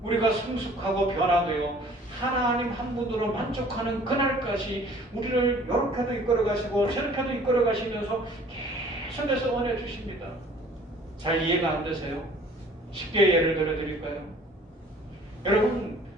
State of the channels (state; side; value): normal; both; correlation 0.52